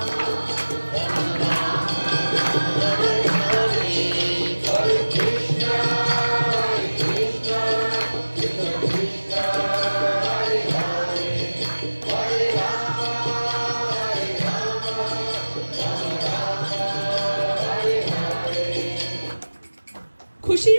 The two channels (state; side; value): inverted; both; correlation -1.00